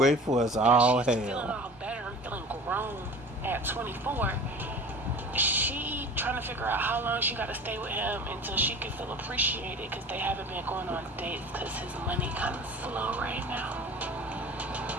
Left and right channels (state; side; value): normal; both; correlation 0.40